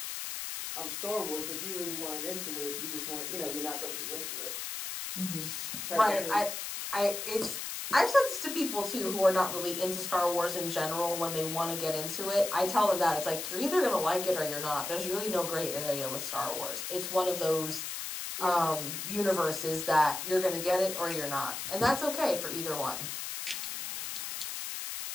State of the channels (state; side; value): noise; left; hiss, 5 dB below the sound